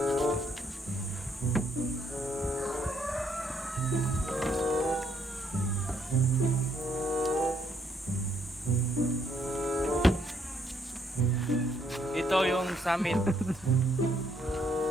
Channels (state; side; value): normal; both; correlation 0.70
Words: Ito yung summit.